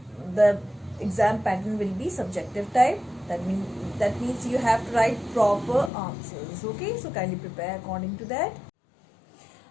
the exam pattern will be subjective type. That means you have to write proper answers. Okay, so kindly prepare according to that.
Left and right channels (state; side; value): drops out; right; at 5.9 s